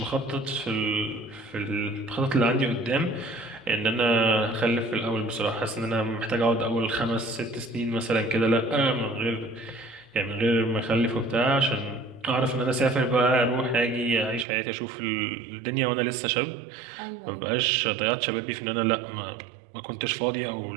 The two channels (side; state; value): left; drops out; at 14.5 s